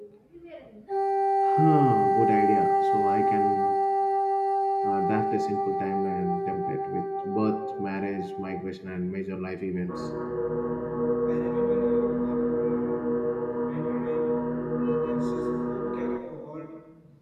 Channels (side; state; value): both; identical; correlation 1.00